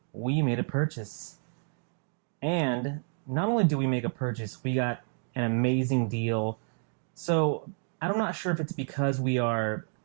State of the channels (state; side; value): silent; left; 58 dB below the other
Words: we made a purchase. And not only did we make a purchase, we got an amazing deal. So I'm not sure if it's because we are